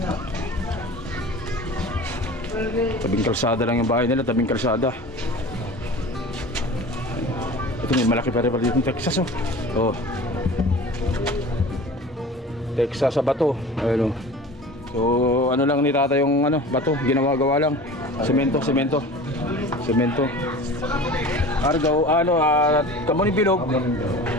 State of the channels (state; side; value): normal; both; correlation 0.38